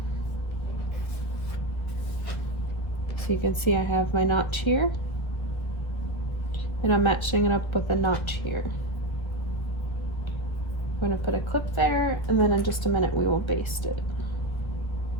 So you can see I have my notch here, and I'm matching it up with a notch here. I'm going to put a clip there, and then in just a minute we will baste it.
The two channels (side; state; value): right; late; 1.3 ms